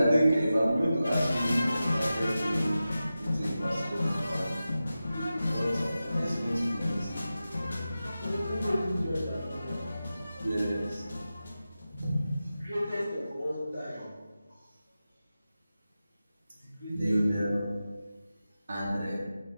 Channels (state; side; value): inverted; both; correlation -0.93